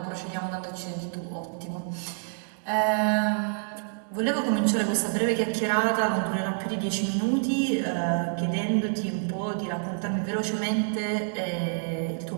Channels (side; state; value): left; silent; digital silence